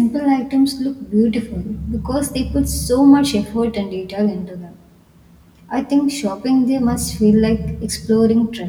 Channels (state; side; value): identical; both; correlation 1.00